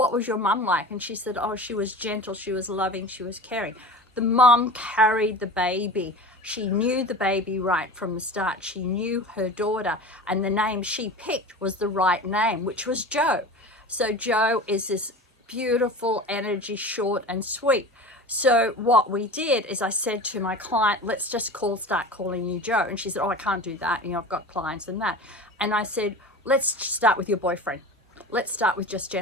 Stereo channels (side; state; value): both; normal; correlation 0.34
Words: was your mum like? And she said, oh, she was gentle, she was loving, she was caring. The mum carried the baby. She knew the baby right from the start. She knew her daughter, and the name she picked was the right name, which was Joe. So Joe is this beautiful energy, short and sweet. So what we did is I said to my client, let's just start calling you Joe. And she said, oh, I can't do that. You know, I've got clients and that. And I said, let's start with your boyfriend. Let's start with just